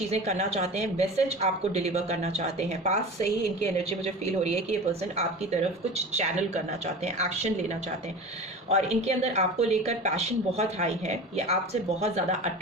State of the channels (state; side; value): normal; both; correlation 0.33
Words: करना चाहते हैं, मैसेज आपको डिलीवर करना चाहते हैं। पास से ही इनकी एनर्जी मुझे फील हो रही है कि ये पर्सन आपकी तरफ कुछ चैनल करना चाहते हैं, एक्शन लेना चाहते हैं और इनके अंदर आपको लेकर पैशन बहुत हाई है। ये आपसे बहुत ज़्यादा